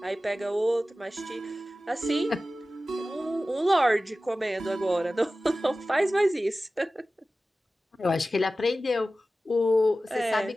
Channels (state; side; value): normal; both; correlation 0.95